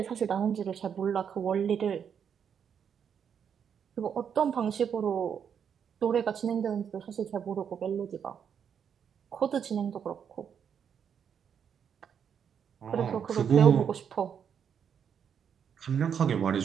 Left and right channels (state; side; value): quieter; left; 7.7 dB